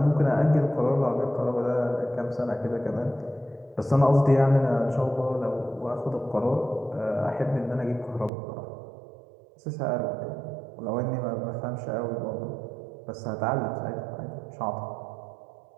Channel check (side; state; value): left; drops out; at 8.3 s